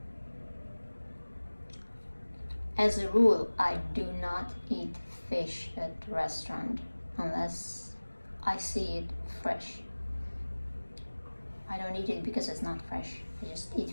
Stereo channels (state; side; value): inverted; both; correlation -1.00